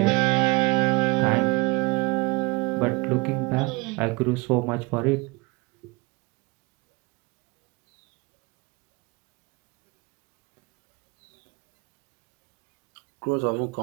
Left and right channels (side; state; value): left; quieter; 24.9 dB